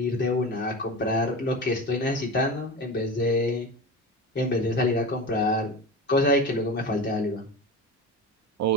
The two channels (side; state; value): both; normal; correlation 0.28